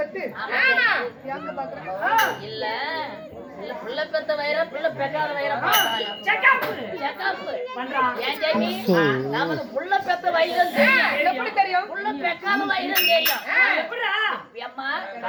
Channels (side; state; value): both; identical; correlation 1.00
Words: பெற்று ஆமாமா. யாங்க பாக்குறேன். இல்ல இல்ல புள்ள பெத்த வைரம் புள்ள பெக்காத வைரம் செக்கப் பண்றான். ஏன் ஜெயமி? நமக்கு புள்ள பெத்த வைரம் தெரியும். எப்படி தெரியும்? புள்ள பெக்காத வைரம் தெரியும். எப்படிடா? அம்மா